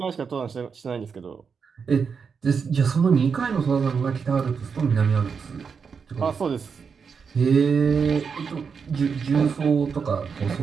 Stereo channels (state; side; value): quieter; left; 5.9 dB